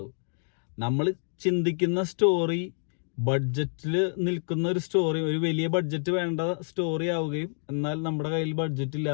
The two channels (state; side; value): silent; right; digital silence